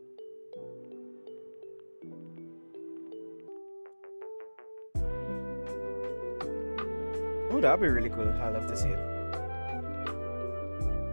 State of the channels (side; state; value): both; inverted; correlation -1.00